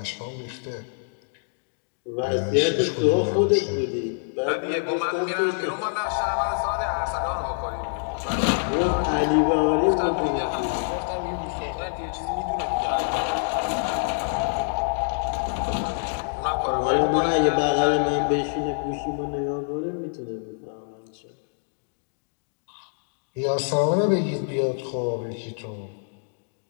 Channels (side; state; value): right; silent; digital silence